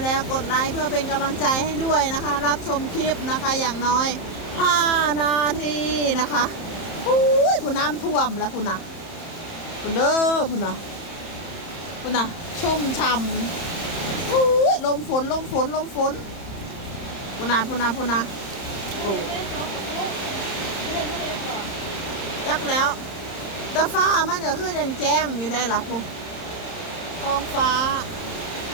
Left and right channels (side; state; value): right; late; 30 ms